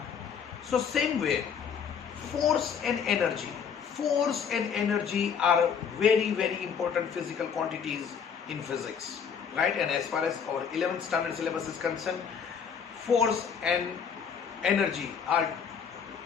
So same way, force and energy are very important physical quantities in physics, right? And as far as our 11th standard syllabus is concerned, force and energy are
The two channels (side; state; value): right; quieter; 6.9 dB